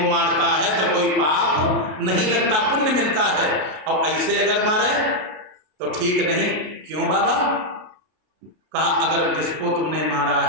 मारता है तो कोई पाप नहीं लगता, पुण्य मिलता है, और ऐसे अगर मारे तो ठीक नहीं। क्यों बाबा? कहा अगर जिसको तुमने मारा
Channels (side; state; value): left; late; 33 ms